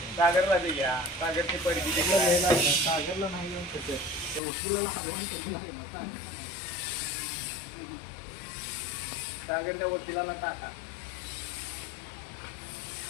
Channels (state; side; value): drops out; right; at 4.4 s